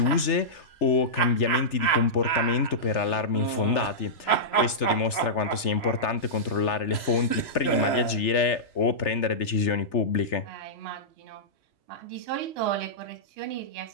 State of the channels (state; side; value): late; right; 3.4 ms